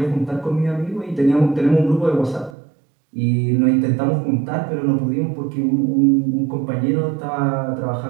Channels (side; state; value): left; drops out; at 2.6 s